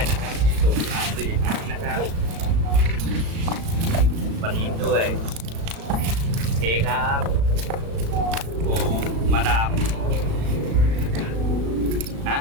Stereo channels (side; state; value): left; late; 36 ms